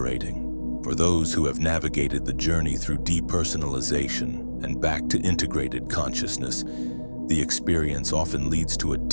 For those who have navigated the journey through depersonalization and back to integrated consciousness, the experience often leads to a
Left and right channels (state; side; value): inverted; both; correlation -1.00